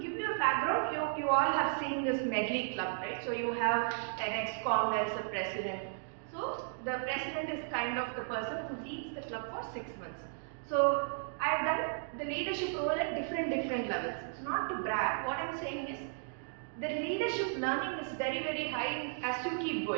you a background, you all have seen this Medley club, right? So you have an ex-com, there is a president. So the president is kind of the person who leads the club for 6 months. So I have done the leadership role at different levels. It's not to brag. What I am saying is the leadership learning is very, very high as you keep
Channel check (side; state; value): left; silent; digital silence